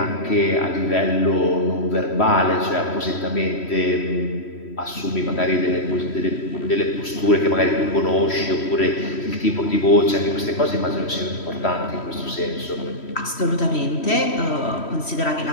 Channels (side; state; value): right; late; 3.1 ms